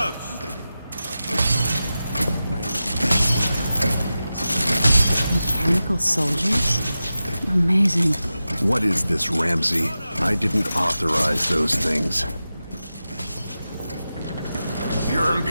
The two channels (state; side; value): inverted; both; correlation -0.93